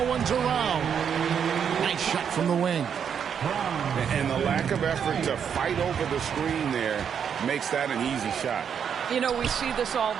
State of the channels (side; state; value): left; quieter; 7.7 dB